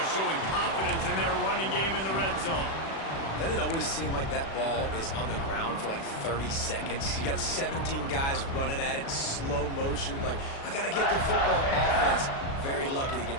showing confidence in their running game in the red zone. Doesn't it always seem like that ball is on the ground for like 30 seconds? You got 17 guys running at it, slow motion. Like, I got to get the football. Offense, very lucky to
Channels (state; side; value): late; right; 36 ms